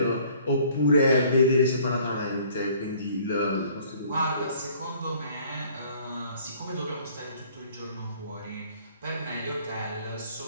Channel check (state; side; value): inverted; both; correlation -0.56